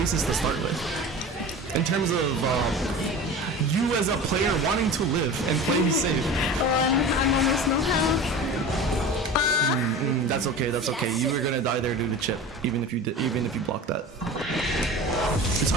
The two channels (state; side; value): normal; both; correlation 0.34